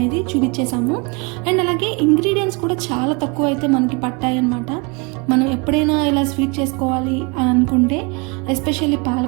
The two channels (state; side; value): quieter; left; 29.8 dB